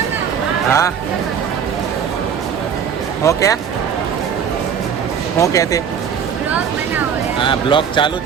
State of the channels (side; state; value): left; quieter; 7.5 dB